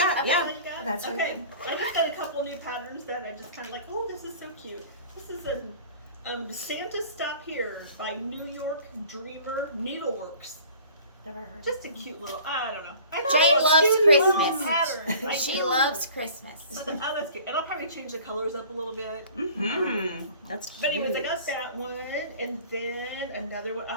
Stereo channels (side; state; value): both; inverted; correlation -0.46